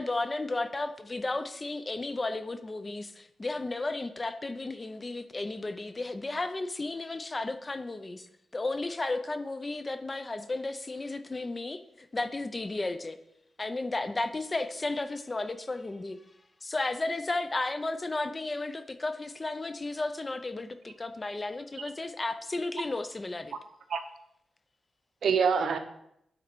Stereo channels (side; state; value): both; normal; correlation 0.90